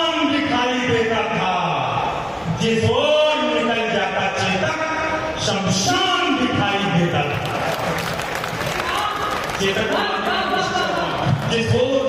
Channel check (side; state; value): both; identical; correlation 1.00